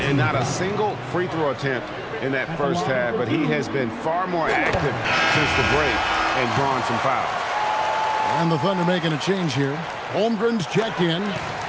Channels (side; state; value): both; identical; correlation 1.00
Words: And not a single free throw attempt in that first half, but he has been far more active since the break and drawn some fouls. And the Thunder making a change here. Holmgren's checked in.